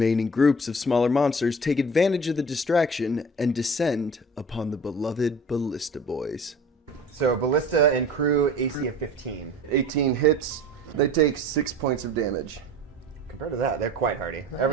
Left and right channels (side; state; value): both; normal; correlation 0.41